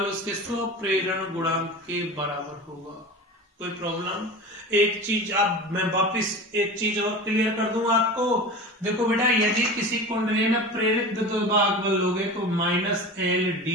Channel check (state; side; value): normal; both; correlation 0.32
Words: उसके स्वप्रेरण गुणांक के बराबर होगा। कोई प्रॉब्लम। एक चीज अब मैं वापिस एक चीज और क्लियर कर दूं आपको। देखो बेटा, यदि किसी कुंडली में प्रेरित विद्युत वाहक बल लोगे तो minus L